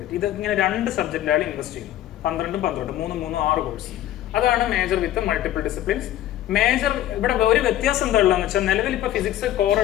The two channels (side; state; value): right; quieter; 13.0 dB